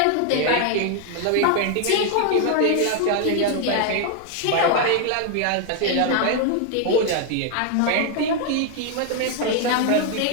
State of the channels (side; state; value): both; different; correlation 0.00